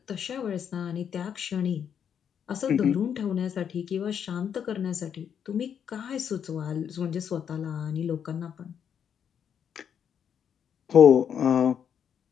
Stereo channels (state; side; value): quieter; right; 8.1 dB